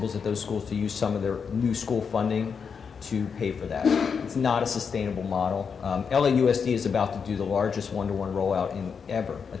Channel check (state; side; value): quieter; right; 6.2 dB